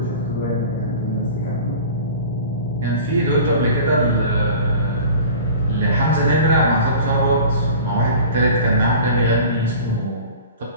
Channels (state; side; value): inverted; both; correlation -0.40